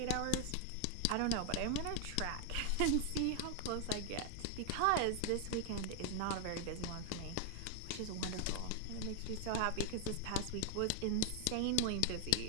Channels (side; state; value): both; different; correlation 0.00